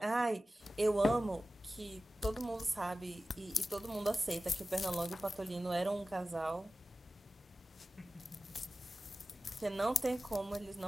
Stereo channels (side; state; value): both; normal; correlation 0.95